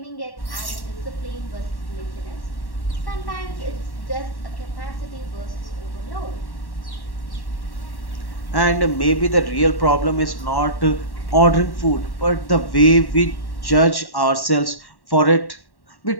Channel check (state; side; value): late; right; 1.1 ms